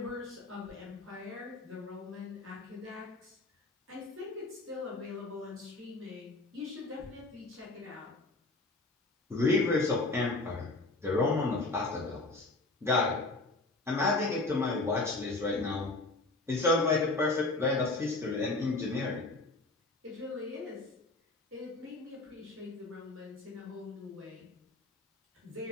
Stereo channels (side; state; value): right; quieter; 3.0 dB